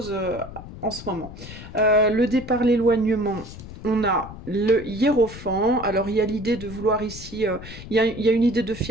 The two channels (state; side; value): noise; left; rumble, 13 dB below the sound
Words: en ce moment. Le départ, l'éloignement... On a le hiérophant, alors il y a l'idée de vouloir ici, il y a une idée de